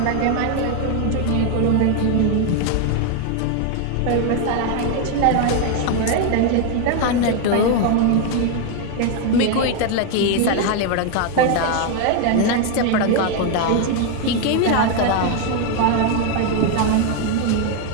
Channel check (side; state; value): both; different; correlation 0.01